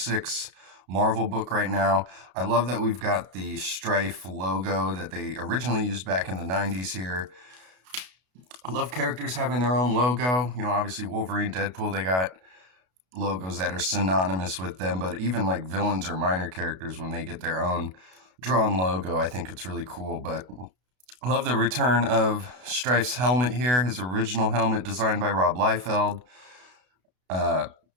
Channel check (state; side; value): late; left; 32 ms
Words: Marvel book right now. I love that we've got the STRYFE logo that they originally used back in the 90s here. I love characters having their own logo. You know, obviously Wolverine, Deadpool, they got logos that are synonymous with them, but even like villains or minor characters, when they get their own drawn logo, I think it's really cool. But I love the return of STRYFE's helmet here, his original helmet designed by Rob Liefeld.